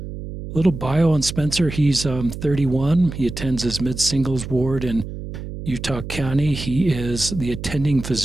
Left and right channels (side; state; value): right; noise; hum, 9 dB below the sound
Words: little bio on Spencer. He's 31. He attends his mid-singles ward in Utah County. He is the attending